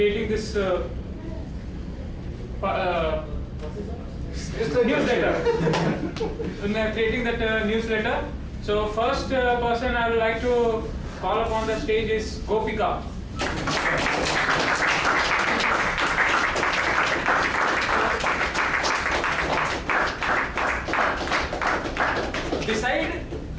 this newsletter. In creating that newsletter. So first person I would like to call upon the stage is Gopika. Beside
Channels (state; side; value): identical; both; correlation 1.00